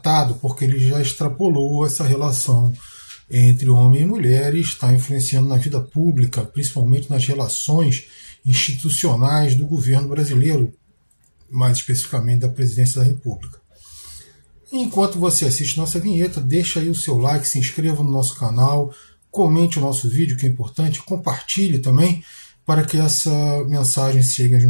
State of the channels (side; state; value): both; inverted; correlation -1.00